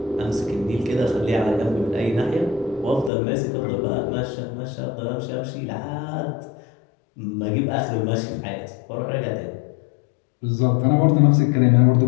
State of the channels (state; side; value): drops out; right; at 3.1 s